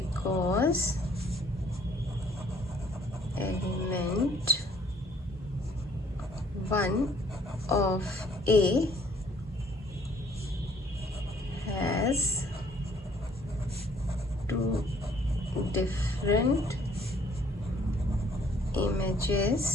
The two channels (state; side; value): normal; both; correlation 0.60